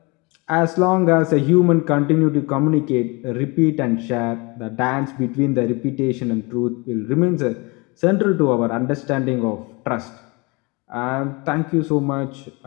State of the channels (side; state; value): right; quieter; 27.5 dB